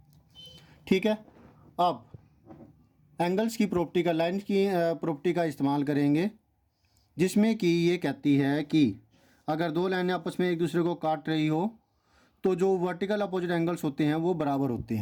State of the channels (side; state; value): both; identical; correlation 1.00